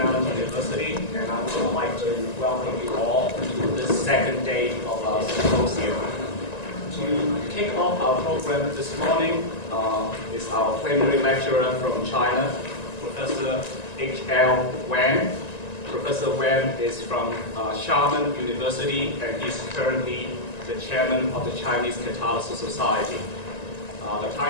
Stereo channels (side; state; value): right; late; 1.9 ms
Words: University, and I would like to welcome you all to this second day of our symposium. To kick off our program this morning is our plenary lecturer from China, Professor H.L. Wang. Professor Wang is from Xiamen University, and he's currently the chairman of the Chinese Catalysis Society. The